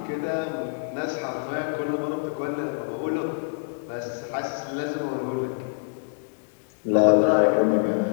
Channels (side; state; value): right; silent; digital silence